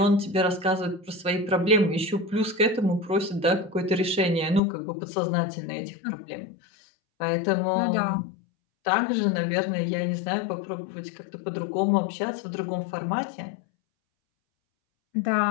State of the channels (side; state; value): right; drops out; at 4.6 s